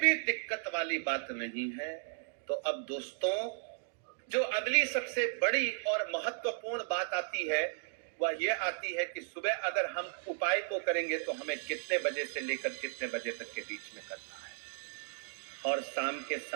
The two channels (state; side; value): silent; left; digital silence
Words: दिक्कत वाली बात नहीं है। तो अब दोस्तों, जो अगली सबसे बड़ी और महत्वपूर्ण बात आती है वह यह आती है कि सुबह अगर हम उपाय को करेंगे तो हमें कितने बजे से लेकर कितने बजे तक के बीच में करना है, और शाम के